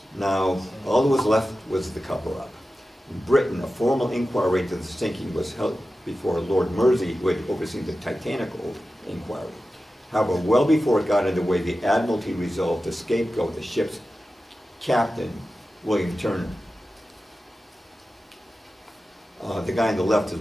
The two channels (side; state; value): both; normal; correlation 0.94